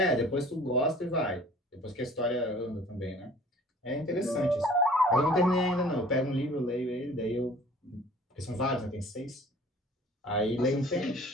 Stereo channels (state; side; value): normal; both; correlation 0.50